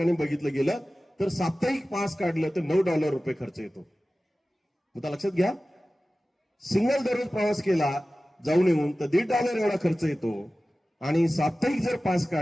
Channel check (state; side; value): normal; both; correlation 0.96